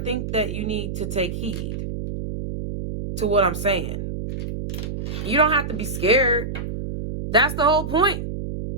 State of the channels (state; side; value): noise; right; hum, 5 dB below the sound